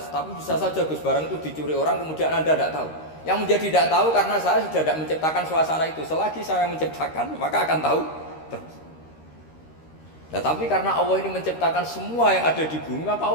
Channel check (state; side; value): late; right; 13 ms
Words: tapi bisa saja Gus barang itu dicuri orang kemudian Anda tidak tahu. Yang menjadi tidak tahu karena saya sudah tidak menciptakan suasana itu. Selagi saya menciptakan, maka akan tahu terus. Nah, tapi karena Allah ini menciptakan semua yang ada di bumi, maka